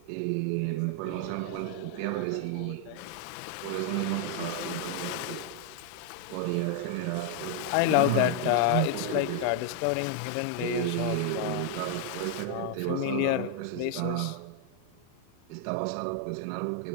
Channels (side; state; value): both; different; correlation 0.00